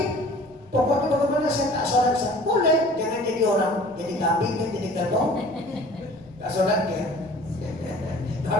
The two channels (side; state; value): right; noise; rumble, 28 dB below the sound